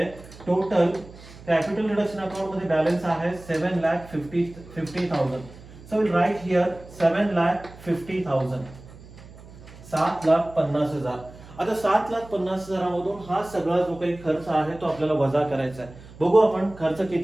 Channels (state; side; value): noise; right; hum, 19 dB below the sound